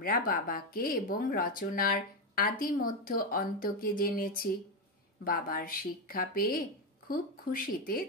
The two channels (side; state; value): both; normal; correlation 0.09